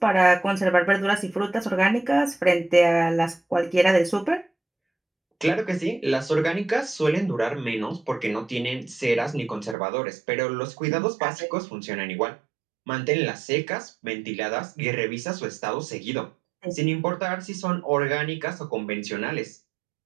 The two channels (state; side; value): drops out; left; at 9.8 s